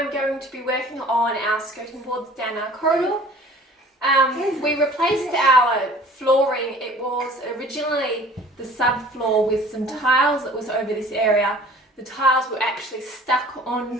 going to be working on our skirting boards down our corridor. We replaced our flooring. It was originally the subfloor with some tiles that was over this area. The tiles were actually stuck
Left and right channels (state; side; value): normal; both; correlation 0.48